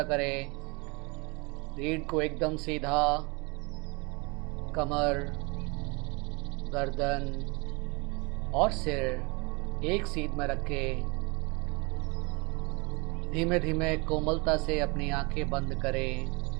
करें, रीढ़ को एकदम सीधा, कमर, गर्दन और सिर एक सीध में रखें। धीमे धीमे कोमलता से अपनी आंखें बंद करें।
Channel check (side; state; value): left; quieter; 29.0 dB